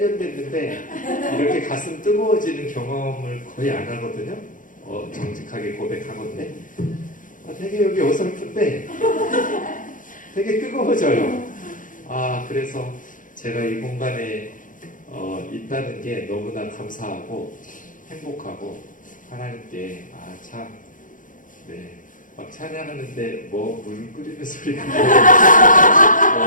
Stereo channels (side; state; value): right; late; 0.38 ms